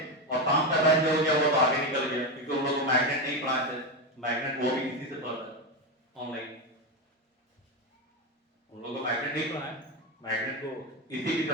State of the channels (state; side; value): normal; both; correlation 0.12